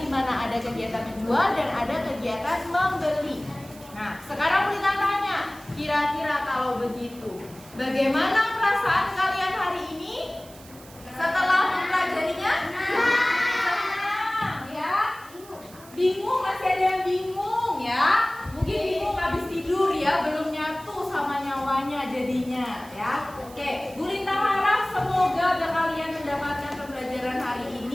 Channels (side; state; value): right; noise; hiss, 21 dB below the sound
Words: di mana ada kegiatan menjual dan ada kegiatan membeli. Nah, sekarang kita tanya, kira-kira kalau begitu, bagaimana perasaan kalian hari ini setelah mempelajarinya? Senang, ya? Bingung, masih ada yang bingung ya? Mungkin bingung habis tidur ya, belum nyatu sama nyawanya jadinya ya. Oke, Bu Lintang harap semoga kalian mendapatkan pembelajaran hari